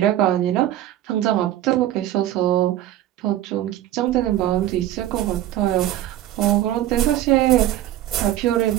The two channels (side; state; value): left; quieter; 13.1 dB